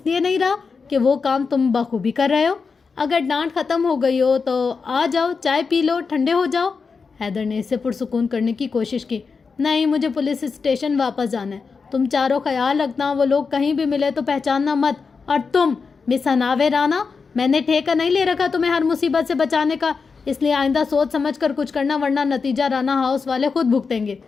لیے نہیں رہا کہ وہ کام تم بخوبی کر رہے ہو۔ اگر ڈانٹ ختم ہو گئی ہو تو آ جاؤ، چائے پی لو، ٹھنڈے ہو جاؤ۔ حیدر نے اسے پرسکون کرنے کی کوشش کی۔ نہیں، مجھے پولیس اسٹیشن واپس جانا ہے۔ تم چاروں خیال رکھنا، وہ لوگ کہیں بھی ملے تو پہچاننا مت۔ اور تم مس حناوے رانا، میں نے ٹھیکہ نہیں لے رکھا تمہیں ہر مصیبت سے بچانے کا، اس لیے آئندہ سوچ سمجھ کر کچھ کرنا، ورنہ نتیجہ رانا ہاؤس والے خود بھگتیں گے۔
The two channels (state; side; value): quieter; right; 5.0 dB